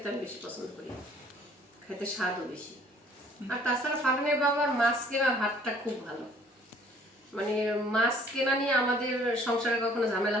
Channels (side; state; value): both; normal; correlation 0.58